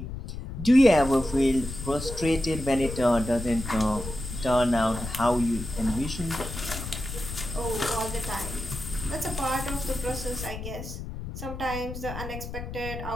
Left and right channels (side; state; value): left; noise; rumble, 8 dB below the sound